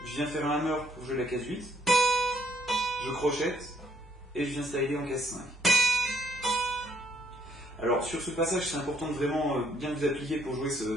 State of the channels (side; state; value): both; normal; correlation 0.69